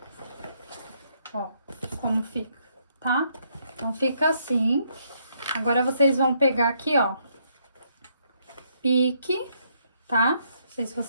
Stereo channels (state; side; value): inverted; both; correlation -0.72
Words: Ó, como fica, tá? Então, fica assim. Agora, vocês vão pegar aqui, ó, pique, tá? Não sei se